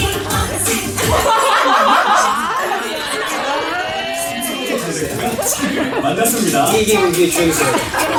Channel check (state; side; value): identical; both; correlation 1.00